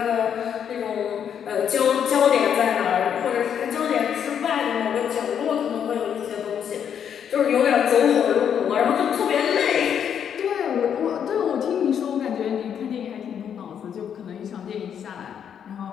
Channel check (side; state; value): right; quieter; 8.4 dB